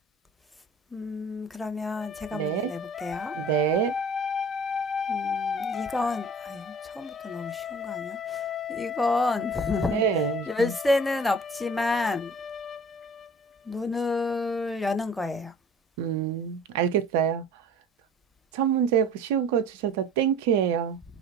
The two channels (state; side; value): normal; both; correlation 0.46